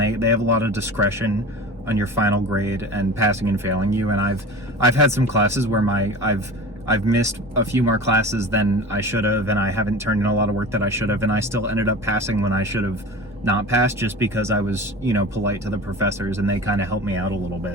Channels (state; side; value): normal; both; correlation 0.35